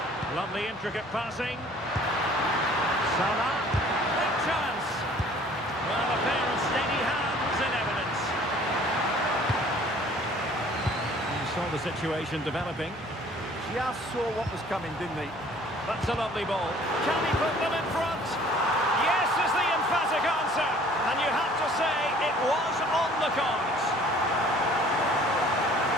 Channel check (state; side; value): normal; both; correlation 0.53